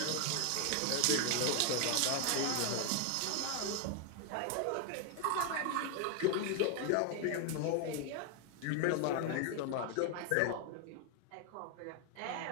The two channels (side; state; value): both; different; correlation 0.01